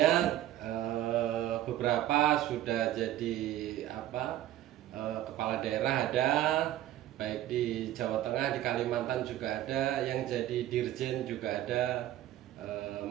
beberapa sudah jadi kepala daerah ada, baik di Jawa Tengah, di Kalimantan juga ada, yang jadi dirjen juga ada,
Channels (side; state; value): left; quieter; 13.3 dB